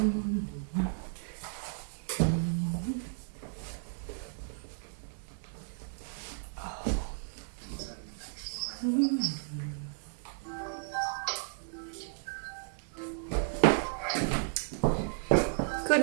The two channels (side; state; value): left; silent; digital silence